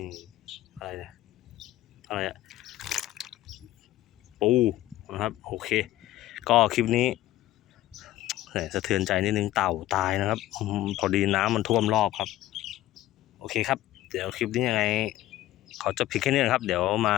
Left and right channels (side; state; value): right; quieter; 15.0 dB